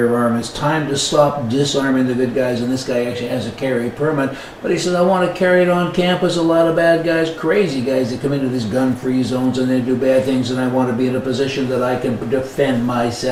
It's time to stop disarming the good guys, and this guy actually has a carry permit, but he said, I want to carry it on campus. A lot of bad guys, crazy guys that come into these gun-free zones and they do bad things, and I want to be in a position that I can defend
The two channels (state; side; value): identical; both; correlation 1.00